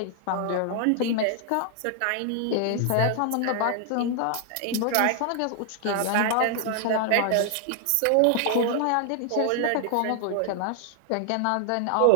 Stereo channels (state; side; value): different; both; correlation 0.00